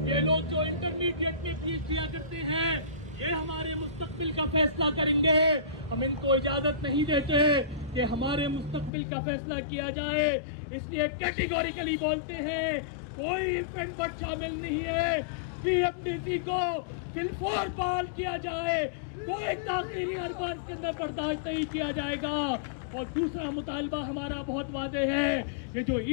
ये लोग जो इंटरमीडिएट में PhD करते हैं, ये हमारे मुस्तकबिल का फैसला करेंगे। हम इनको इजाजत नहीं देते कि हमारे मुस्तकबिल का फैसला किया जाए, इसलिए कैटेगोरिकली बोलते हैं कोई इवेंट बट शामिल नहीं है। PMDC को बिल्कुल बहाल किया जाए, कोई ताकीरी अरबान के अंदर बर्दाश्त नहीं किया जाएगा। और दूसरा मुतालबा हमारा बहुत वादे है, ये जो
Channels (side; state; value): right; drops out; at 8.9 s